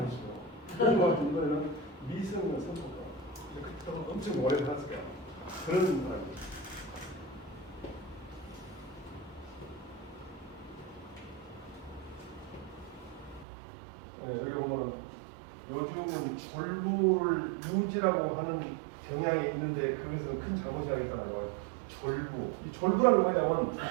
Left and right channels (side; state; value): left; drops out; at 13.5 s